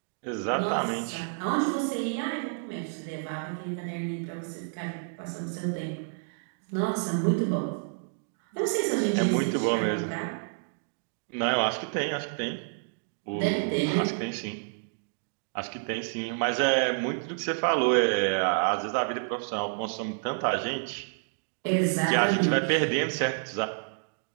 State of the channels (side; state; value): left; silent; digital silence